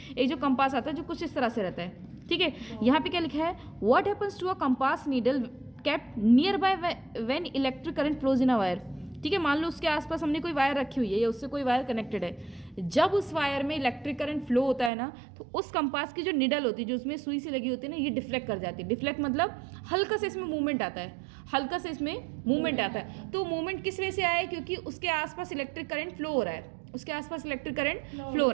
एक जो कंपास आता है जो कुछ इस तरह से रहता है। ठीक है, यहाँ पे क्या लिखा है, what happens to a compass needle kept nearby when electric current flows in a wire. ठीक है, मान लो उसके आसपास हमने कोई वायर रखी हुई है या उससे कोई वायर कनेक्टेड है, जब उस वायर में इलेक्ट्रिक करंट फ्लो होता है ना तो उस कंपास की जो निडल होती है, जो उसमें सुई सी लगी होती है ना, ये डिफ्लेक्ट कर जाती है। डिफ्लेक्ट मतलब हल्का से इसमें मूवमेंट आता है, हल्का से इसमें मूवमेंट आता है। तो मूवमेंट किस वजह से आया है, क्योंकि उसके आसपास इलेक्ट्रिक करंट फ्लो हो रहा है, उसके आसपास इलेक्ट्रिक करंट फ्लो हो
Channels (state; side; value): drops out; left; at 14.9 s